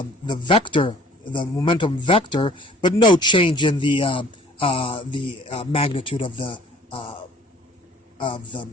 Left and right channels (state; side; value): normal; both; correlation 0.52